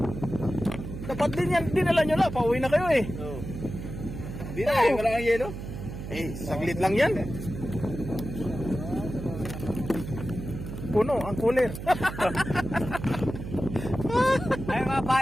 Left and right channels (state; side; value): noise; right; hum, 8 dB below the sound